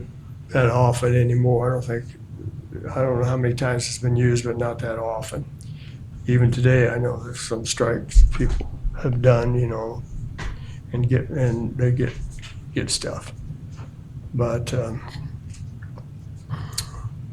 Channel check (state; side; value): identical; both; correlation 1.00